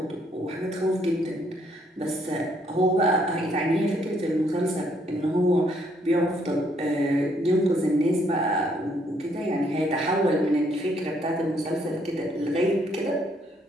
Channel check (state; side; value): normal; both; correlation 0.69